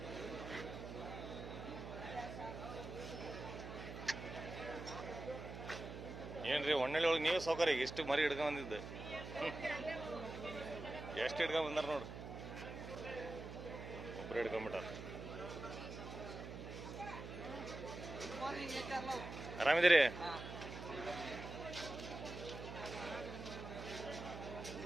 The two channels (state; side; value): noise; right; hum, 9 dB below the sound